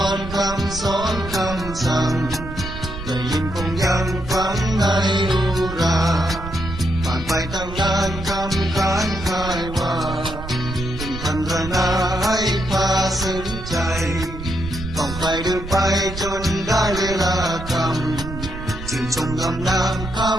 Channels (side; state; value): right; noise; rumble, 10 dB below the sound